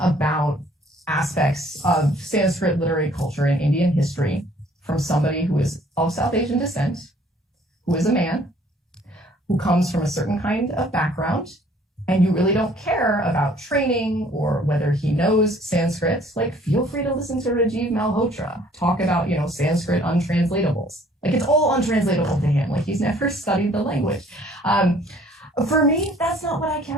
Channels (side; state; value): both; normal; correlation 0.58